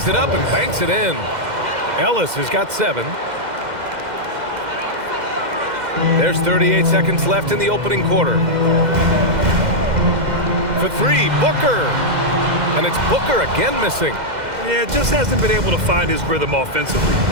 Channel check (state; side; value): late; left; 2.1 ms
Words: it up and banks it in. Ellis has got 7. There's 38 seconds left in the opening quarter. For 3, Booker. And it's Booker again missing. Yeah, just hasn't been able to find his rhythm offensively,